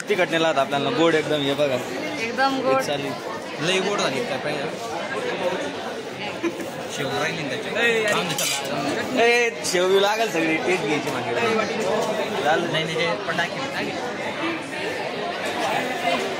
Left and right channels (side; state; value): both; identical; correlation 1.00